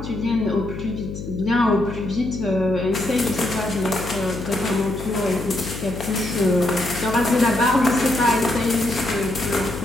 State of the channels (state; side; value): noise; left; hum, 9 dB below the sound